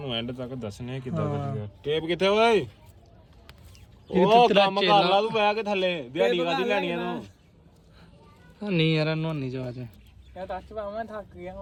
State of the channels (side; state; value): both; identical; correlation 1.00